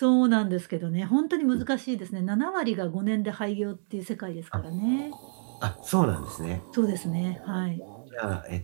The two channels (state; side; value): silent; left; digital silence